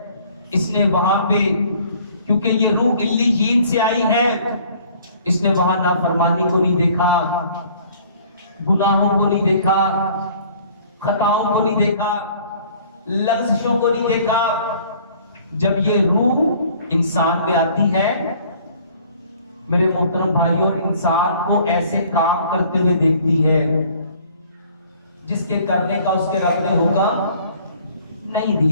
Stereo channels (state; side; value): inverted; both; correlation -0.55